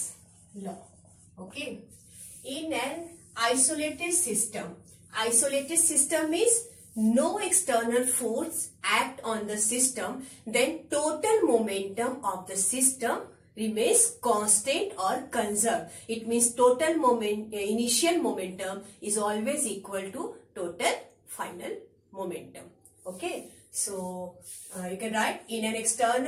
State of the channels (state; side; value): identical; both; correlation 1.00